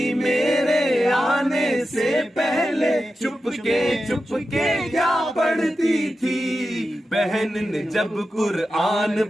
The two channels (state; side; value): normal; both; correlation 0.91